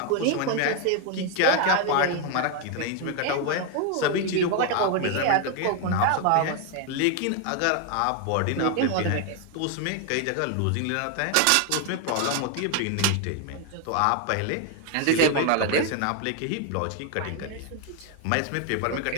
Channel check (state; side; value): different; both; correlation 0.01